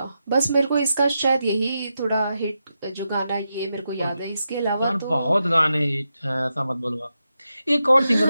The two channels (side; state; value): both; inverted; correlation -0.87